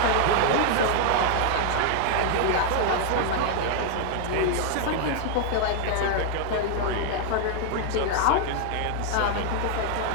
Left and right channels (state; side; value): different; both; correlation 0.00